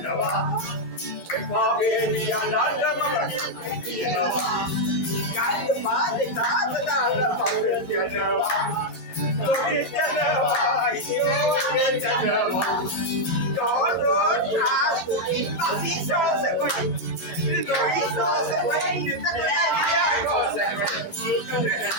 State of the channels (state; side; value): late; right; 11 ms